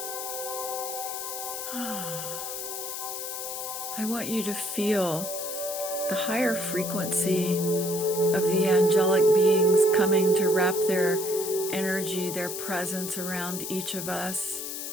I want you to feel the higher frequency of the angelic beings coming to wrap their energy, their presence around each of us.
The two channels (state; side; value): noise; left; hiss, 6 dB below the sound